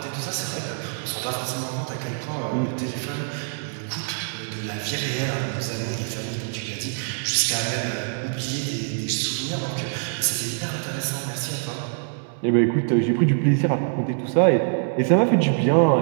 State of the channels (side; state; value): left; silent; 62 dB below the other